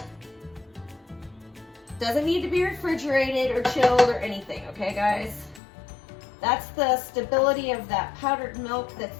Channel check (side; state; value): right; drops out; at 5.6 s